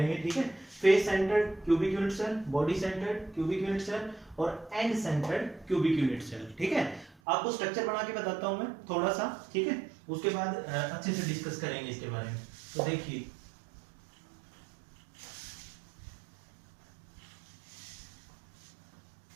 ठीक है, face centred cubic unit cell, body centered cubic unit cell और end centered cubic unit cell. ठीक है, आपको स्ट्रक्चर बना के बताता हूं मैं थोड़ा सा। ठीक है, उसके बाद अच्छे से डिस्कस करेंगे इसके बारे में। तो देखिए,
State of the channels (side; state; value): left; drops out; at 7.2 s